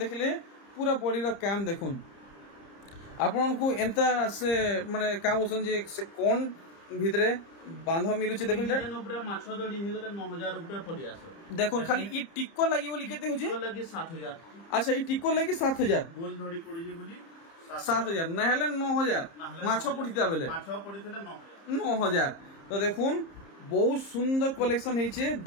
पूरा बॉडी रो काम देखुन आपन को एंता से माने का बोसन जे से कोन भितरे बांध मिलुचे देखुन डिजाइन ऊपर माछो दड़ी हे गले 9000 रुपया पड़ी आसो देखुन खाली ई टिक्को लागि बोली केते होजे टिक्को लागि 7000 अच्छा ई टिक्को लागि 7000 गोल धड़ी पड़ी जे बोली 7000 नहले 9000 माछो पड़िता बेले माछो पड़ितले 9000 तो देखुन बहुत सुंदर कलेक्शन हेचे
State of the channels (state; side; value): late; right; 30 ms